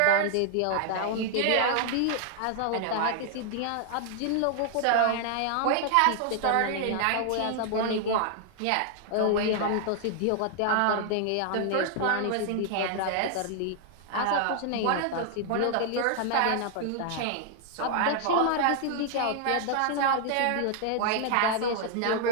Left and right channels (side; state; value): both; different; correlation 0.00